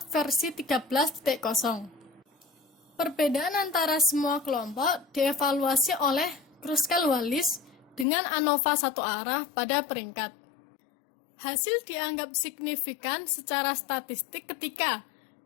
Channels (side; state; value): right; drops out; at 8.1 s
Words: versi 13.0. Perbedaan antara semua kelompok dievaluasi oleh Kruskal-Wallis dengan ANOVA satu arah pada peringkat. Hasil dianggap signifikan secara statistik ketika